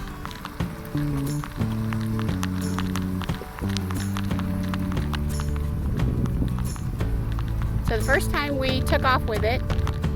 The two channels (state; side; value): identical; both; correlation 1.00